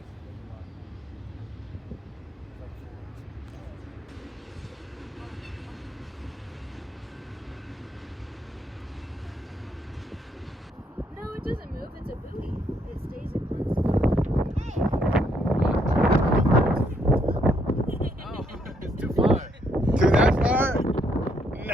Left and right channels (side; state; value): both; normal; correlation 0.72